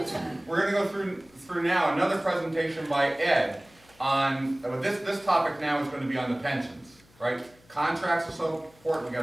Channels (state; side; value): noise; left; hum, 29 dB below the sound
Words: We're going to go through now another presentation by Ed on this topic. Now is going to be on the pensions, right? Contracts are so important. We got